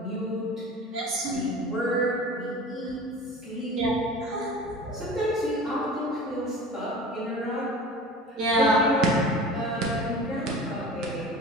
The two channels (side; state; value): both; normal; correlation 0.37